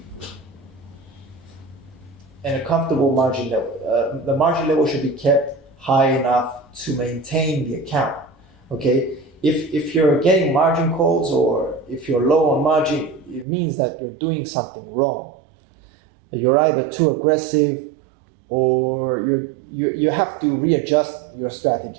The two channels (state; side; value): drops out; left; at 13.5 s